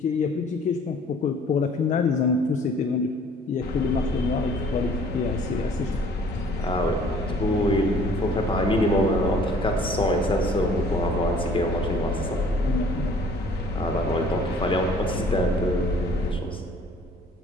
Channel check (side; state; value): both; normal; correlation 0.54